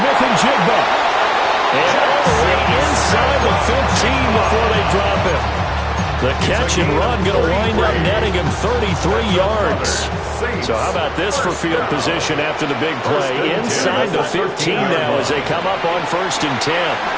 and Jigba. And all the way inside the 15 before they drop him. The catch and run going to wind up netting him 33 yards. So how about this for field position after the big play? Inside the 15 now as they come up on 1st and 10.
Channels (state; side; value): identical; both; correlation 1.00